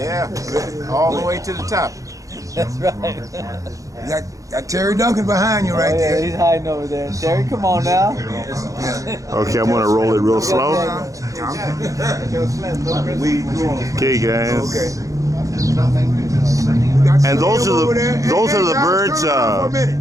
all the way to the top. That's right. got Terry Duncan behind you right there. He's hiding over there. Terry, come on now. Okay, I'm gonna roll it real slow. Okay, guys. Okay. And those are the birds.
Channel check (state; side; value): late; left; 0.16 ms